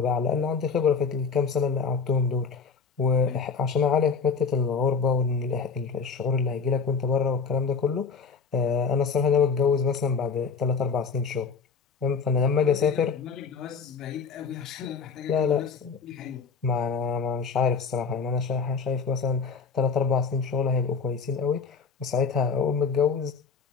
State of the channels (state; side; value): quieter; right; 5.4 dB